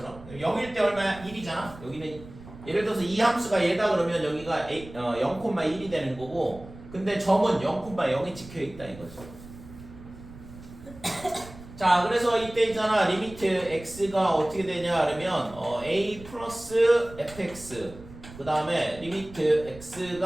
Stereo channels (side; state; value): right; noise; rumble, 17 dB below the sound